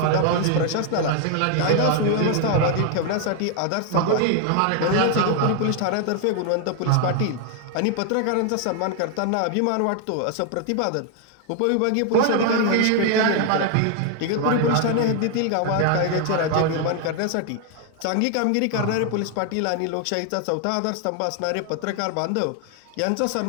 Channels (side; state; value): both; different; correlation 0.00